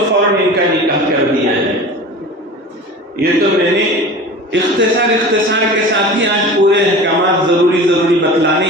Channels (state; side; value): normal; both; correlation 0.36